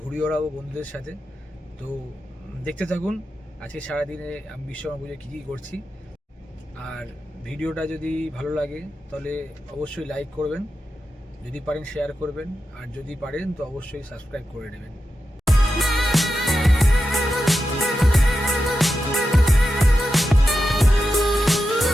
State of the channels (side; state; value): both; normal; correlation 0.90